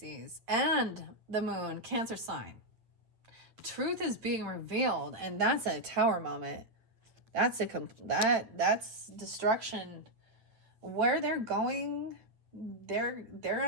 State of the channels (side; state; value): left; late; 8.9 ms